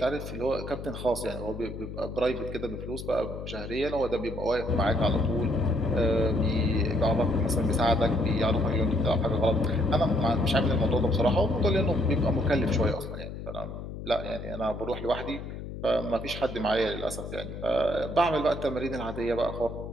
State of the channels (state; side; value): noise; left; hum, 9 dB below the sound